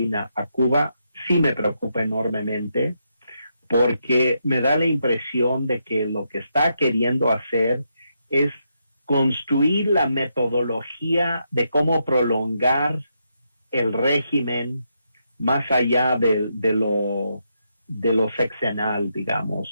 a Cuba sí me preocupa enormemente, porque me da la impresión de que lo que está queriendo hacer es construir la metodología de cómo prolongar el régimen más allá de lo sexenal,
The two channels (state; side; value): inverted; both; correlation -0.81